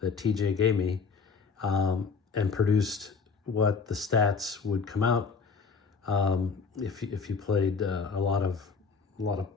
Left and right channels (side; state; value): right; quieter; 5.0 dB